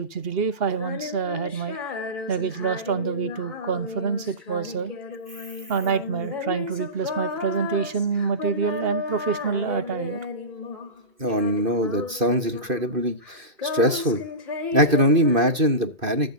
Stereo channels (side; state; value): left; late; 2.5 ms